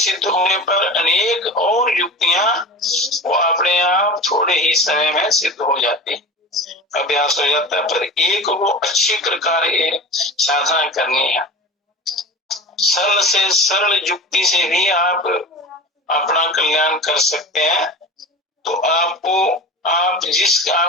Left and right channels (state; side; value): normal; both; correlation 0.33